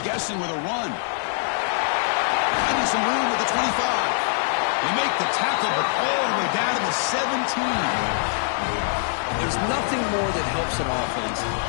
guessing with a run. Finding some room at the 25. They make the tackle, but all the way down to the 17. There's nothing more that helps an offense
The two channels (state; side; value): silent; right; digital silence